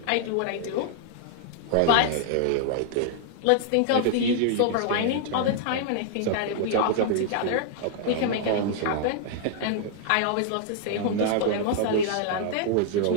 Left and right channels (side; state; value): both; different; correlation -0.01